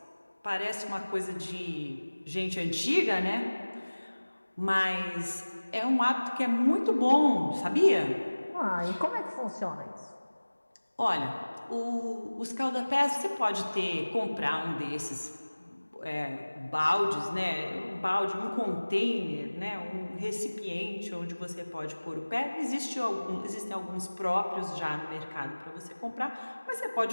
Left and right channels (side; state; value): both; inverted; correlation -1.00